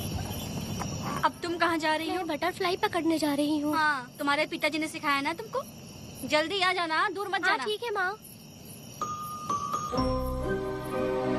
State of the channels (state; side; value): identical; both; correlation 1.00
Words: कहाँ जा रही हो? बटरफ्लाई पकड़ने जा रही हूँ। हाँ, तुम्हारे पिताजी ने सिखाया ना तुमको। जल्दी आ जाना, दूर मत जाना। ठीक है माँ।